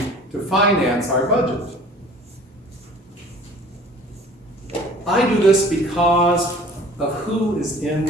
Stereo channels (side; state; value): both; normal; correlation 0.48